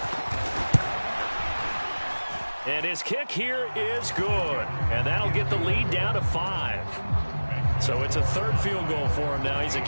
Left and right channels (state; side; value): inverted; both; correlation -1.00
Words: And his kick here is good. And that'll get the lead down to 5. So it's a 3rd field goal for him now. He's